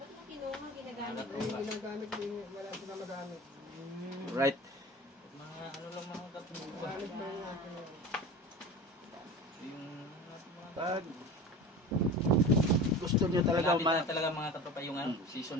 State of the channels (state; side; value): normal; both; correlation 0.34